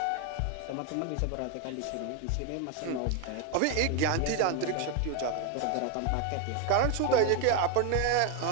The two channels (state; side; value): different; both; correlation 0.01